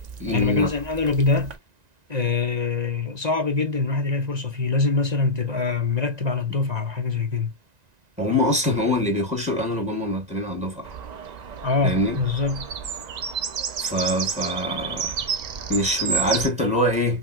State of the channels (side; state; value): left; late; 1.9 ms